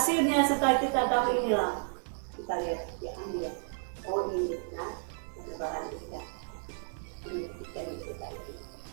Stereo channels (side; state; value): left; silent; digital silence